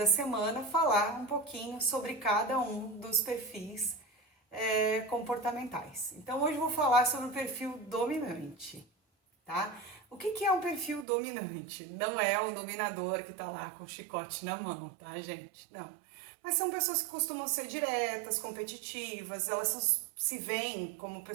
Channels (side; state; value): left; drops out; at 11.1 s